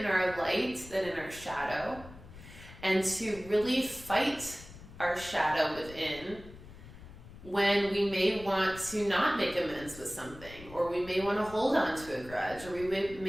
our light than in our shadow, and to really fight our shadow within when we may want to not make amends with something, or we may want to hold on to a grudge, or we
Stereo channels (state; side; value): noise; left; rumble, 17 dB below the sound